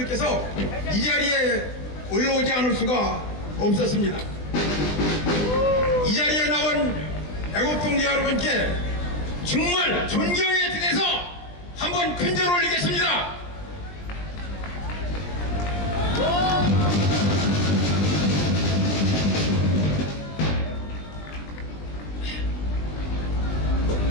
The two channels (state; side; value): late; right; 20 ms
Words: 이 자리에 올라오지 않을 수가 없었습니다. 이 자리에 나온 애국동지 여러분께 정말 존경의 뜻에서 한번 큰절 올리겠습니다.